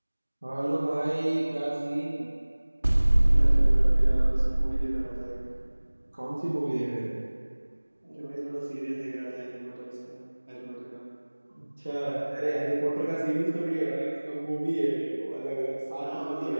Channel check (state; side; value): inverted; both; correlation -1.00